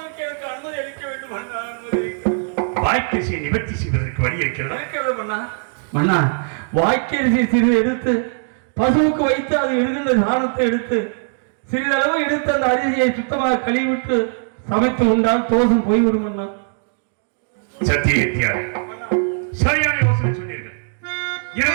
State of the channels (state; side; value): silent; left; digital silence